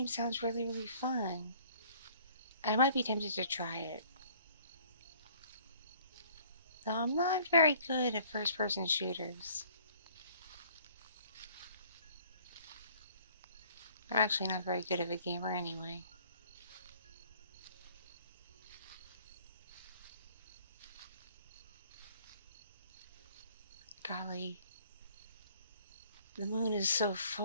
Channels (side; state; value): both; inverted; correlation -0.56